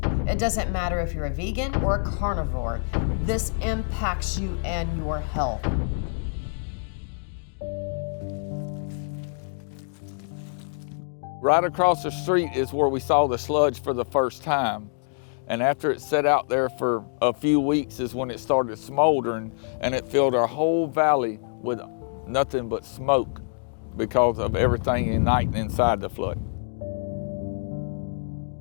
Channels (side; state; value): right; silent; digital silence